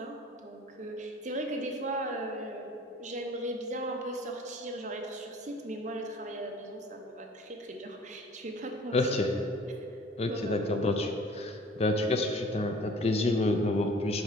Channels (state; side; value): normal; both; correlation 0.49